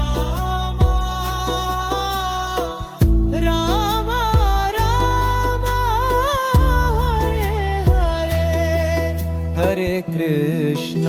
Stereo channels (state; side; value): identical; both; correlation 1.00